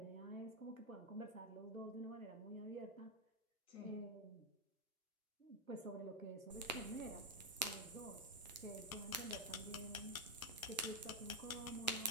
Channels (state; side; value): normal; both; correlation 0.04